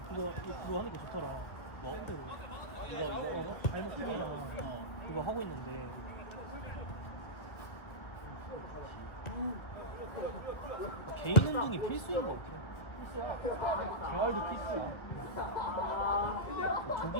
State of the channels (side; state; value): right; late; 1.9 ms